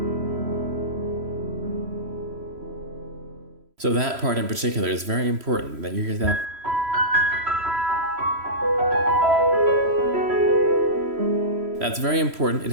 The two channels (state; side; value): late; left; 3.0 ms